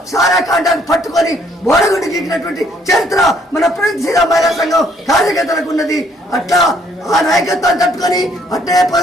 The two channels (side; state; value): both; normal; correlation 0.65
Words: సారా కాంట్రాక్ట్ పట్టుకొని బోడగుండి గీకినటువంటి చరిత్ర మన ప్రగతిశీల మహిళా సంఘం కార్యకర్తలకు ఉన్నది. అట్లా ఆ నాయకత్వాన్ని తట్టుకొని అట్లే